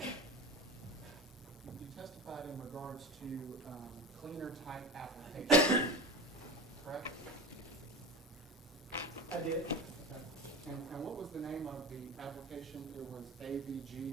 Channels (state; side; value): normal; both; correlation 0.30